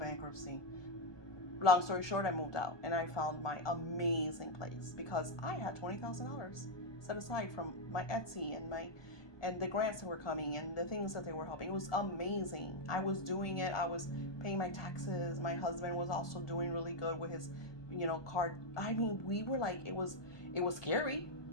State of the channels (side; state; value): right; late; 1.2 ms